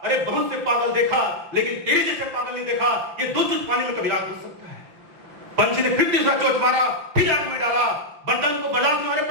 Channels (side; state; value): left; late; 6.6 ms